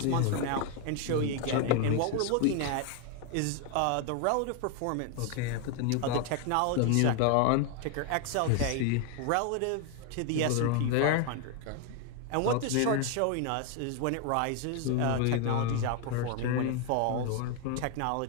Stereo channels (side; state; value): both; different; correlation 0.01